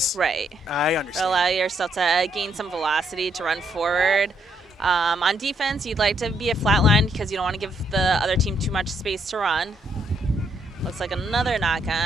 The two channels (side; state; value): both; normal; correlation 0.74